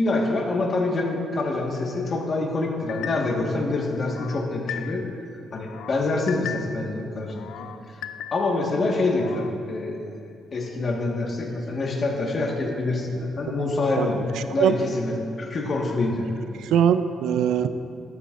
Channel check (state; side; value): normal; both; correlation 0.71